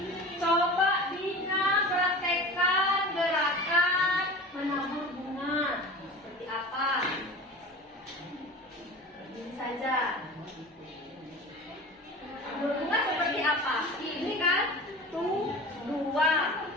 coba Dina praktekkan gerakan menabur bunga. Seperti apa? Ini saja. Menabur bunga seperti apa? Ini kan 1, 2,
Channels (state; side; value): normal; both; correlation 0.35